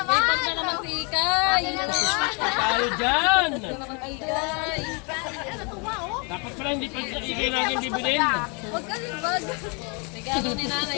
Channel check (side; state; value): right; quieter; 33.6 dB